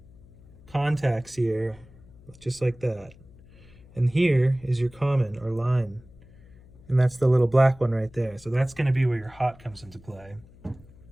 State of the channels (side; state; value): left; noise; hum, 24 dB below the sound